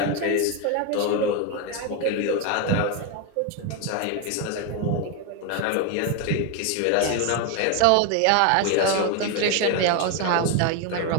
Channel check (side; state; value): both; different; correlation 0.02